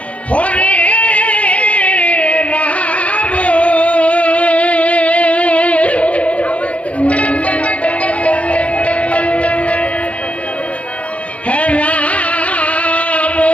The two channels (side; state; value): right; late; 0.064 ms